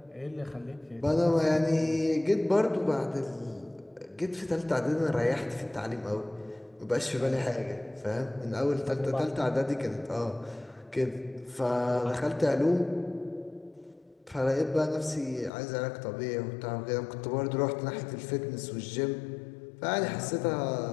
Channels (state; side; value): drops out; right; at 15.5 s